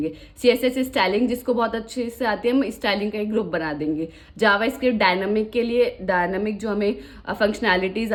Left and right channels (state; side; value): identical; both; correlation 1.00